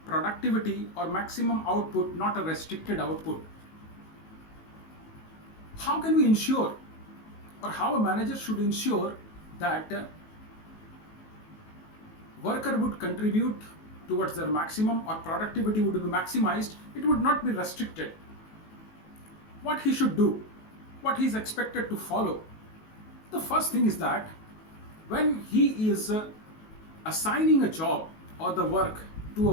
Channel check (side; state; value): right; late; 19 ms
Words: productivity or maximum output, not a restricted output. How can we ensure, or how a manager should ensure that worker would contribute towards their maximum or productivity would be maximized? It would not be restricted. What he should do, what he is expected to follow. The first thing is that when he is assigning a job or the work to a